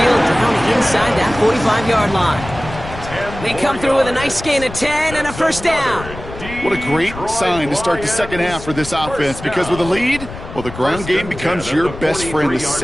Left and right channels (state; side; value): noise; left; rumble, 12 dB below the sound